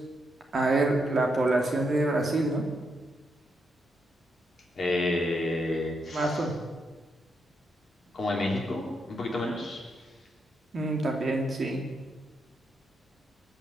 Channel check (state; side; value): normal; both; correlation 0.80